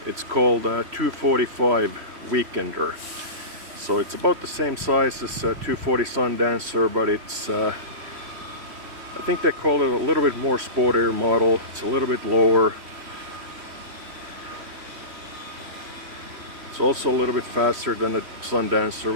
It's called a 245 Weekender. So it's about the same size as a 240 Sundancer, but it's I think they call it a little bit more sportier model. It's a little bit lower. It's also a little bit faster than the Sundancer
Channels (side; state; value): left; late; 3.1 ms